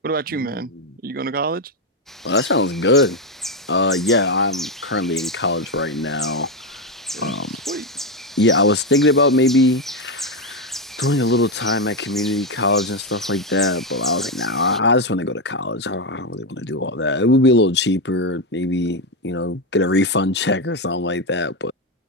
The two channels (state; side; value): normal; both; correlation 0.08